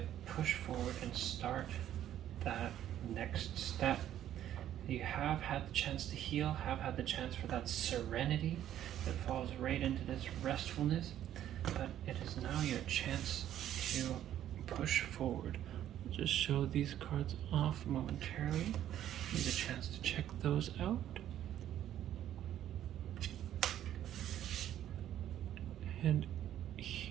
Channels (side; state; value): left; quieter; 11.5 dB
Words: push forward and start that next step. You have had the chance to heal, have had the chance for that serenity that falls right into this restfulness, but it is now your chance to push forward. I'll just show these cards off momentarily. Need a chance to check those out. And